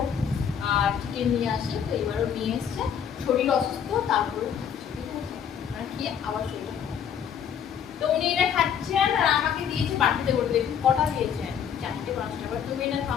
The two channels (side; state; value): right; quieter; 8.2 dB